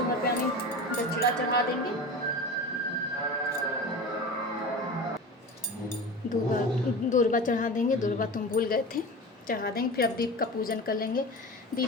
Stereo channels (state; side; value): normal; both; correlation 0.31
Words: दक्षिणा चढ़ा देंगे। दूर्वा चढ़ा देंगे, दूर्वा तुम भूल गए थे, चढ़ा देंगे। फिर अब दीप का पूजन कर लेंगे।